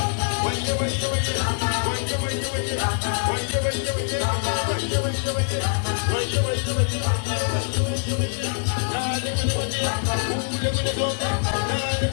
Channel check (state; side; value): silent; right; digital silence